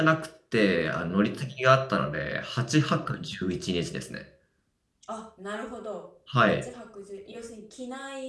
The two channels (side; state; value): both; identical; correlation 1.00